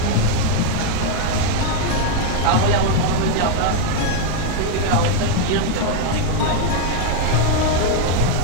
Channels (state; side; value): different; both; correlation 0.01